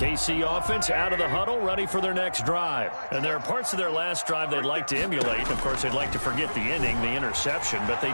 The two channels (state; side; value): inverted; both; correlation -1.00